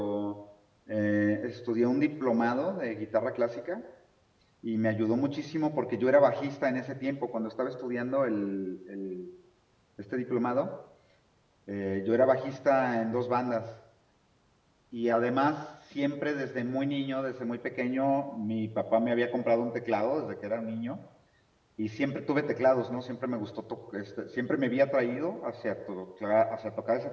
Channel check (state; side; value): identical; both; correlation 1.00